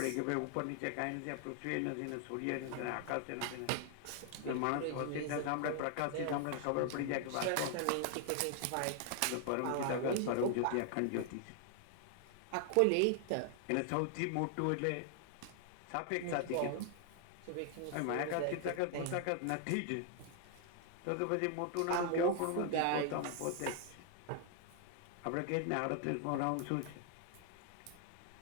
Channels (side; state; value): both; different; correlation 0.00